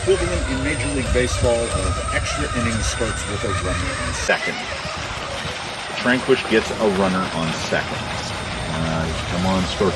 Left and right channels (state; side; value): identical; both; correlation 1.00